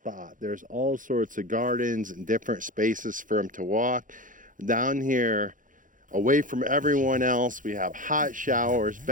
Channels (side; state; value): left; late; 0.38 ms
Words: There's all sorts of gardens and different spaces for them to walk. Down here, away from everyone else, we have hot showers,